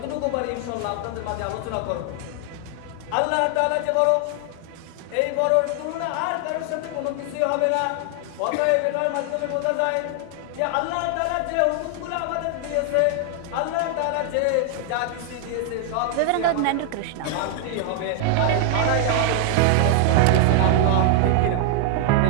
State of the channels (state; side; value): different; both; correlation 0.00